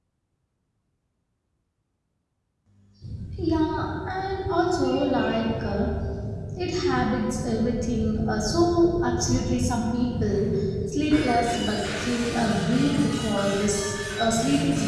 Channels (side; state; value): both; identical; correlation 1.00